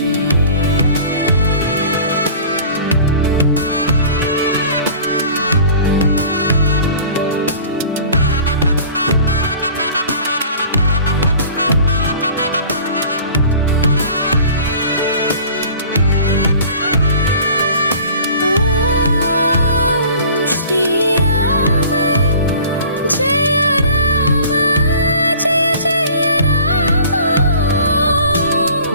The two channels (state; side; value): inverted; both; correlation -0.45